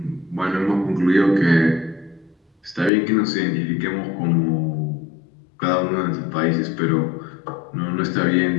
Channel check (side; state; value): right; drops out; at 2.9 s